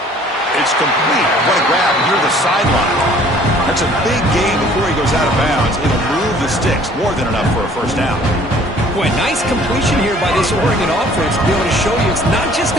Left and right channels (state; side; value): normal; both; correlation 0.55